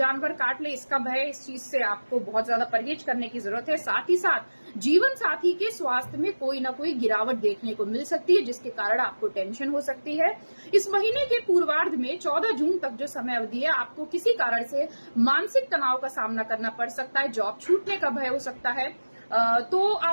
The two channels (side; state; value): both; inverted; correlation -1.00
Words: काट ले इसका भय, इस चीज से आपको बहुत ज्यादा परहेज करने की जरूरत है। साथ ही साथ जीवन साथी के स्वास्थ्य में कोई ना कोई गिरावट देखने को मिल सकती है, जिसके कारण आपको टेंशन हो सकती है। इस महीने के पूर्वार्ध में 14 जून तक जो समय अवधि है, आपको किसी कारण से मानसिक तनाव का सामना करना पड़ सकता है, जॉब छूटने का भय हो सकता है, तो